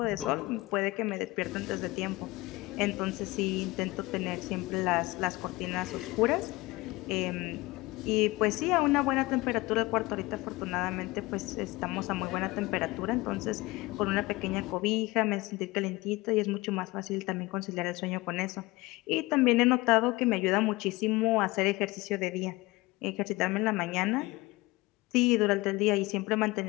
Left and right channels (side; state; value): right; quieter; 21.5 dB